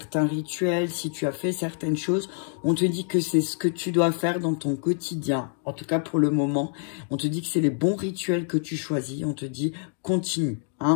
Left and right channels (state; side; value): silent; right; 55 dB below the other